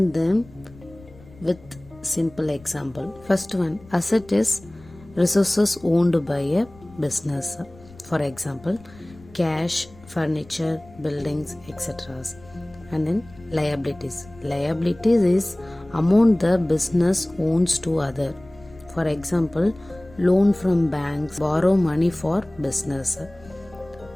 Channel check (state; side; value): noise; left; rumble, 23 dB below the sound